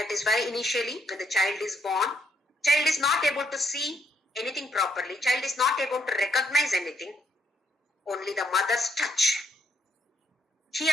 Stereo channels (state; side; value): normal; both; correlation 0.72